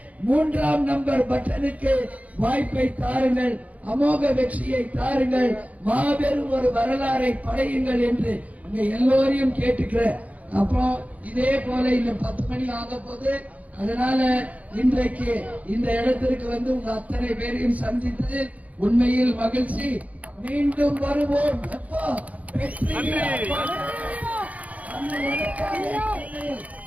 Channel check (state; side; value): late; left; 0.070 ms